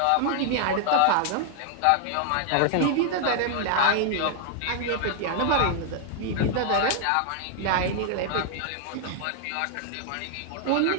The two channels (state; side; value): different; both; correlation 0.00